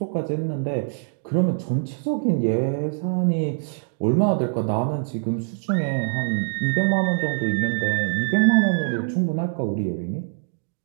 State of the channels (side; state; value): left; silent; digital silence